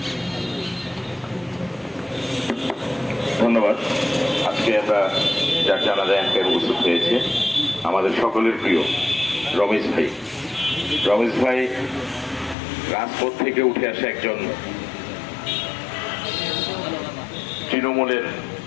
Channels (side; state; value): right; drops out; at 12.6 s